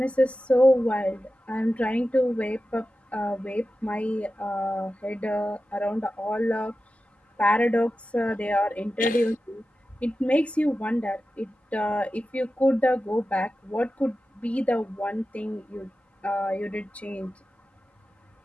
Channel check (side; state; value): both; normal; correlation 0.93